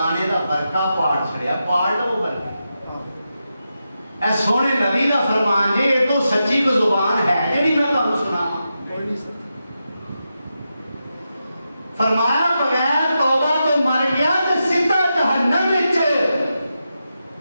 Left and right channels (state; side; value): inverted; both; correlation -0.88